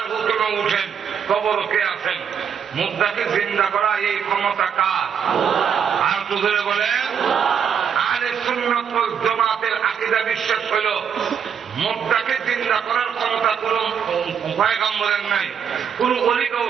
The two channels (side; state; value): left; quieter; 7.5 dB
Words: হুকুমে উঠেন, কবর কে আছেন, মুর্দাকে জিন্দা করা এই ক্ষমতা কার? আর দুজনে বলেন আহলে সুন্নাত ওয়াল জামাতের আকীদা বিশ্বাস হলো মুর্দাকে জিন্দা করার ক্ষমতা কোন পয়গম্বরের নাই, কোন ওলি